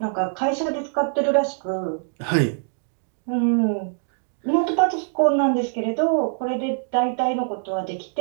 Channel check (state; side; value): silent; left; digital silence